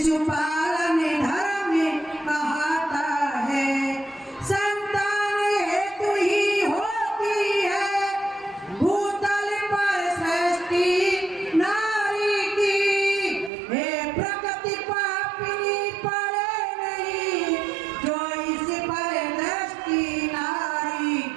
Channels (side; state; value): left; drops out; at 13.5 s